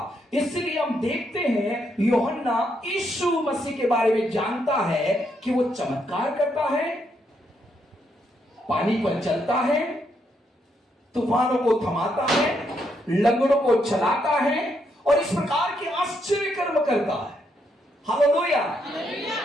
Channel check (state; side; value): normal; both; correlation 0.77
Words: इसलिए हम देखते हैं यूहन्ना यीशु मसीह के बारे में जानता है कि वो चमत्कार करता है, पानी पर चलता है, तूफानों को थमाता है, लंगड़ों को चलाता है और इस प्रकार के आश्चर्य कर्म करता है। Hallelujah,